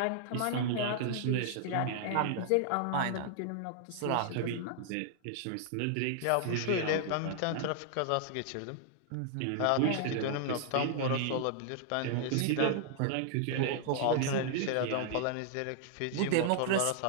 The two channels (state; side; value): different; both; correlation -0.01